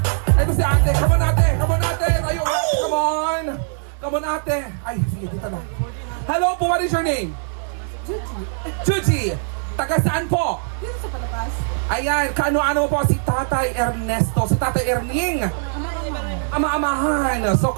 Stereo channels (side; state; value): left; silent; digital silence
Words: si ate, come on ate, come on ate! Tayo, ate, come on! Come on ate! Ay, sige, dito na. Hello po, what is your name? Chuchi! Taga saan po? Dito sa Palapas. Ayan, kaano-ano po si Tatay Ernesto, si Tatay Erning. Ama-amahan. So,